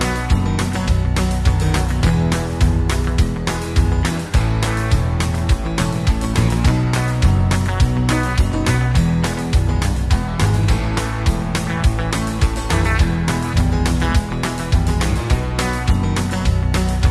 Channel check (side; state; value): both; identical; correlation 1.00